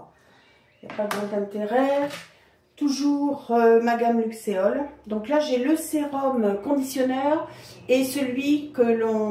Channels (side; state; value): both; identical; correlation 1.00